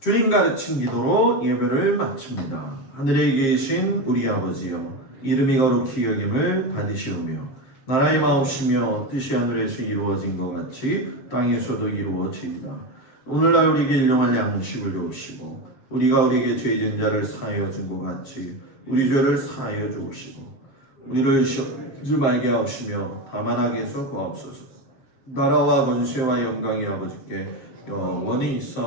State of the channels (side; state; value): right; late; 7.5 ms